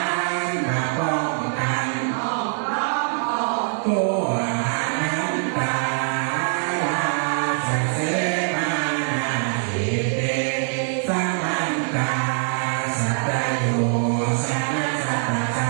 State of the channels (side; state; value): left; silent; 63 dB below the other